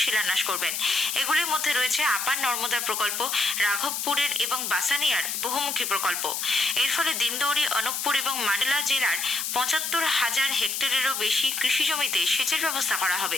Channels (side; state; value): left; noise; hiss, 2 dB below the sound